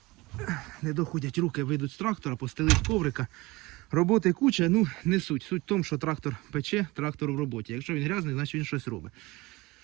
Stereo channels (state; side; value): quieter; left; 22.1 dB